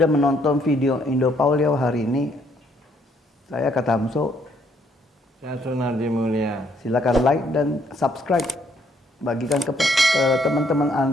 menonton video Indo Paulio hari ini. Saya Katamso. Saya Sunardi Mulia. Silakan like dan subscribe. Bagikan ke teman-teman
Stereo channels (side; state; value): both; normal; correlation 0.68